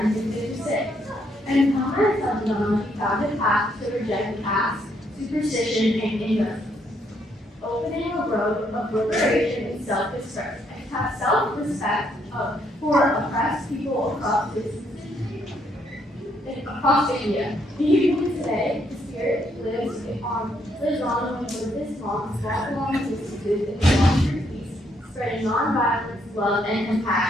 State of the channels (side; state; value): both; normal; correlation 0.72